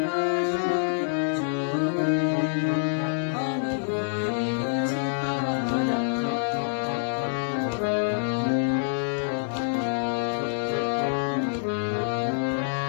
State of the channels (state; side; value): silent; right; 56 dB below the other